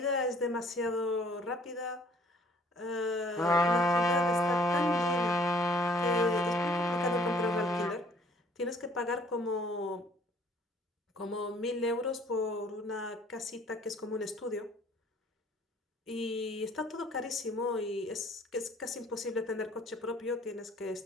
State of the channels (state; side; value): normal; both; correlation 0.58